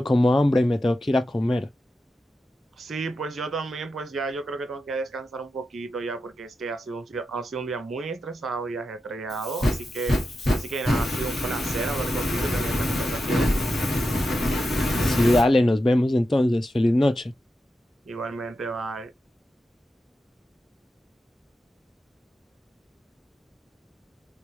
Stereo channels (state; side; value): normal; both; correlation 0.89